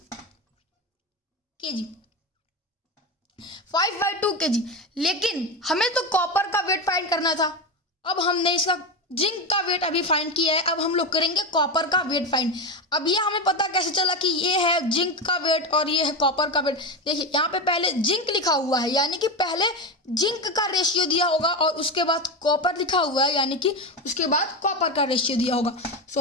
kg। 5/2 kg। लेकिन हमें तो कॉपर का वेट फाइंड करना था। अब हमने इसका जिंक का वेट अभी फाइंड किया है, अब हम लोग करेंगे कॉपर का वेट फाइंड। अब ये हमें पता कैसे चला कि ये है जिंक का वेट और ये है कॉपर का वेट। देखिए यहाँ पे पहले जिंक लिखा हुआ है, यानी कि पहले जिंक का रेशियो दिया होगा और उसके बाद कॉपर लिखा हुआ है, यानी कि उसके बाद कॉपर का रेशियो दिया होगा।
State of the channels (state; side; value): normal; both; correlation 0.17